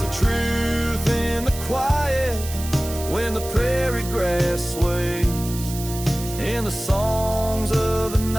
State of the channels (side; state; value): right; noise; hiss, 11 dB below the sound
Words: a truth in the quiet when the prairie grass sways, in the songs of the